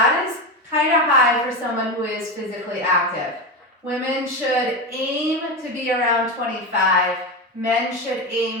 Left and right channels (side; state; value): both; normal; correlation 0.17